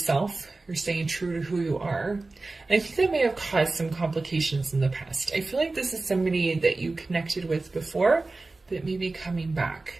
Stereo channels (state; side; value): quieter; left; 3.4 dB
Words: You're staying true to who you are. And I think that may have caused some complications in the past. I feel like this is somebody that you connected with before that may be coming